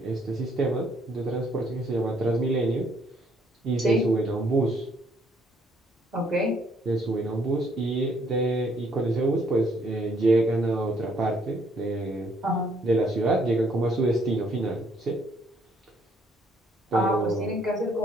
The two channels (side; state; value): both; normal; correlation 0.67